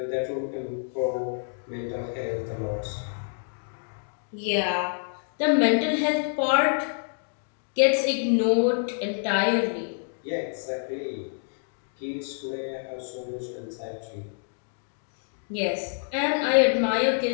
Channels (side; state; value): right; silent; digital silence